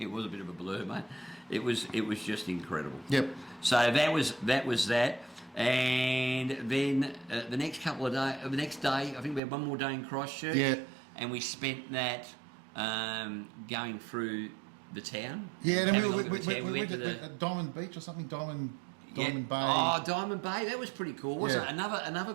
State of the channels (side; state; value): left; drops out; at 9.4 s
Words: was a bit of a blur, mate. It was just incredible. Yep. So that was that. And then the next couple of days, the next day, I think we had one more day in Christchurch. Yeah. And we spent that going through the town. Yeah, and then we went to the Diamond Beach or something, Diamond Bay. Oh, Diamond Bay, that was pretty cool, wasn't it? Yeah. Another